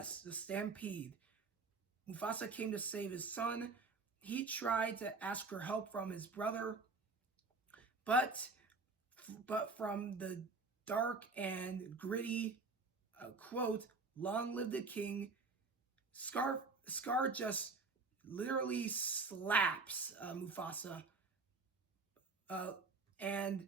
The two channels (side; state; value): left; quieter; 4.0 dB